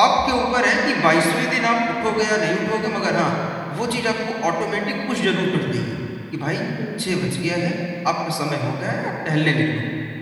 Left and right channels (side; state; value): both; identical; correlation 1.00